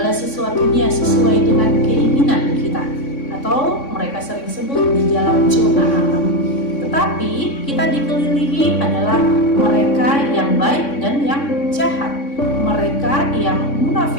sesuatunya sesuai dengan keinginan kita, atau mereka sering sebut di dalam zona alam. Tetapi kita dikelilingi adalah mereka yang baik dan yang jahat, mereka yang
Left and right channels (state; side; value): late; right; 3.6 ms